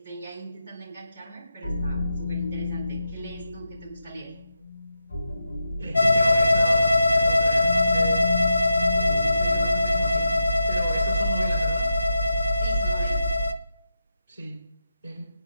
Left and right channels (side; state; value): both; inverted; correlation -0.88